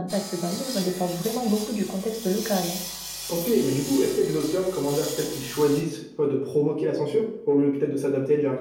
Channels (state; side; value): identical; both; correlation 1.00